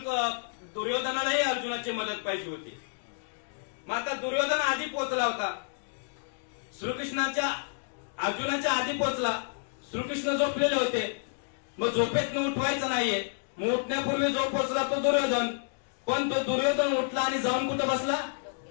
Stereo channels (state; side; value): silent; right; digital silence